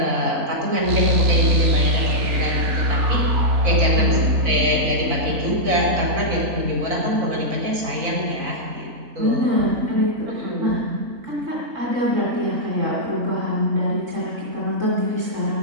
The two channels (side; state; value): left; late; 4.0 ms